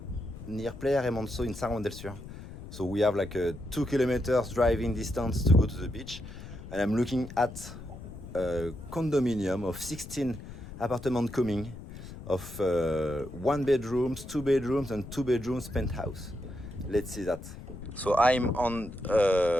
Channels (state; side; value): noise; left; rumble, 13 dB below the sound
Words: near Playa Remanso in Juan del Sur. So we have like a 2 kilometers driving distance to go to the beach, and I'm looking at a condominium of 16 apartments coming of 1 bedrooms, 2 bedrooms and 2 bedrooms penthouse. Let's see that. So I'm on